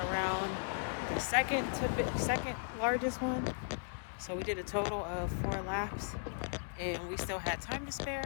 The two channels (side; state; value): right; silent; digital silence